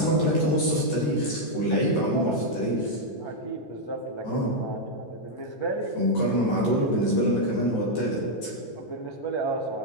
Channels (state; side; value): late; right; 13 ms